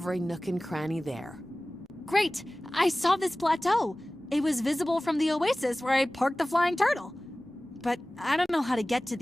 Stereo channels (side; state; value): both; normal; correlation 0.98